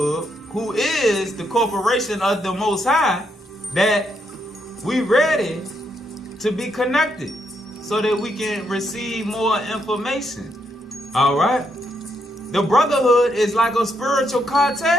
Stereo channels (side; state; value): both; normal; correlation 0.77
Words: who is the corporation of the Most High, that we ready to be connected so that we can receive more information. Alright? The brotherhood is like a spiritual